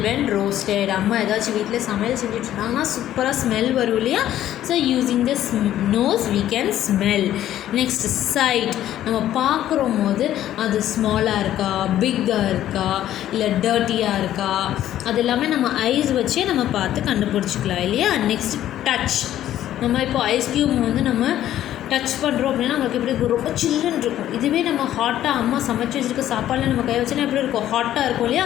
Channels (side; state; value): right; quieter; 12.3 dB